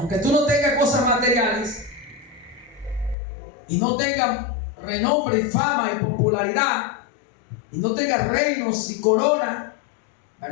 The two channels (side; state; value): right; drops out; at 3.2 s